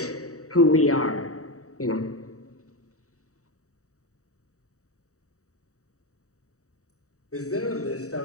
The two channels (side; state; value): right; late; 0.65 ms